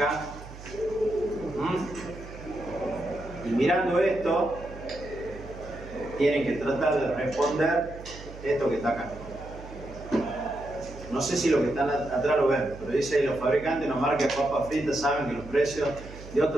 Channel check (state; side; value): noise; right; hum, 15 dB below the sound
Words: Y mirando esto, tienen que tratar de responder esto que está acá. No sé si lo que están atrás lo ven, pero dice ahí: los fabricantes de una marca de papas fritas saben que los precios de